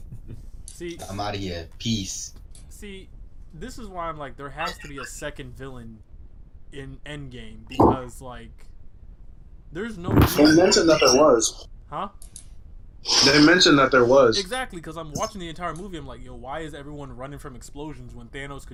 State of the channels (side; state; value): both; identical; correlation 1.00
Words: See, I'm out of here. Peace. See, this is why I'm like, there has to be a second villain in Endgame because, like, there's no. They mentioned that there was. Huh? They mentioned that there was. Exactly, because I'm watching the entire movie. I'm like, yo, why is everyone running from explosions when Thanos